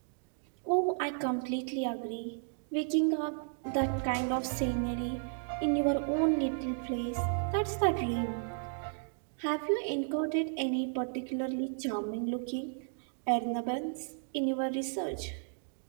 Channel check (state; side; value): silent; left; digital silence